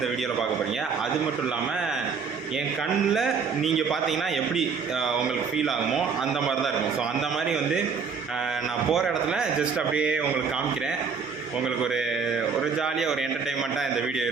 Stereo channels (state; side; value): quieter; left; 5.7 dB